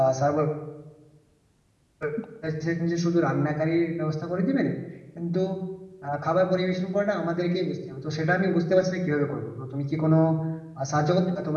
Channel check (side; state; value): both; identical; correlation 1.00